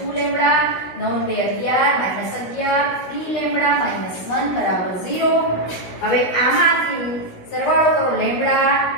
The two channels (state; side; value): late; right; 16 ms